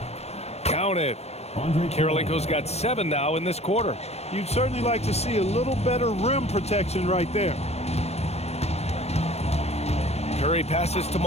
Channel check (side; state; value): right; late; 0.31 ms